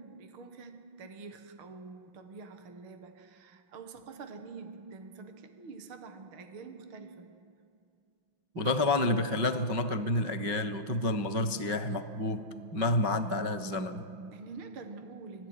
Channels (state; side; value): late; left; 6.0 ms